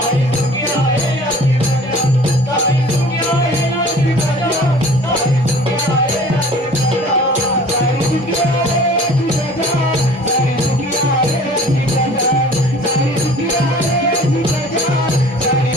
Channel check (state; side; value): normal; both; correlation 0.47